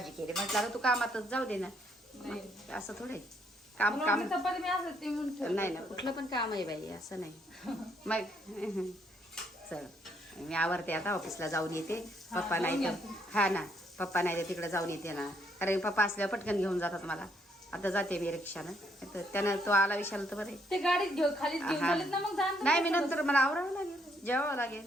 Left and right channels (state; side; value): normal; both; correlation 0.71